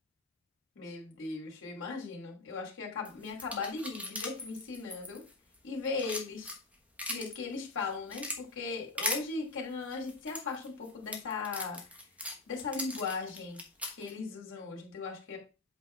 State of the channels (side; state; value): right; quieter; 3.3 dB